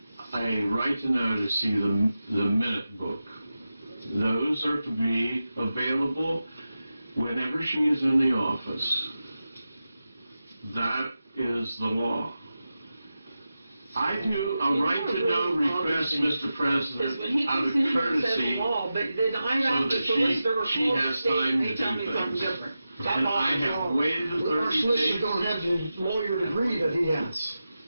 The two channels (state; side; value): inverted; both; correlation -0.92